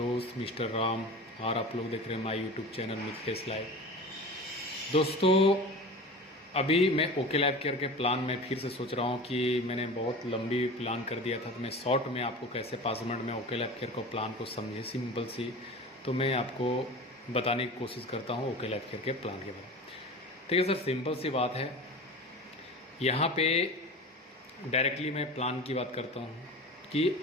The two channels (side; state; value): both; normal; correlation 0.34